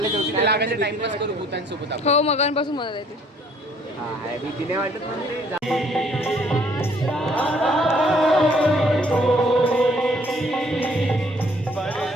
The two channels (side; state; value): both; normal; correlation 0.61